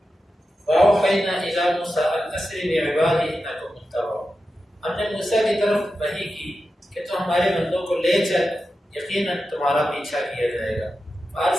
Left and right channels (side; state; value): both; normal; correlation 0.91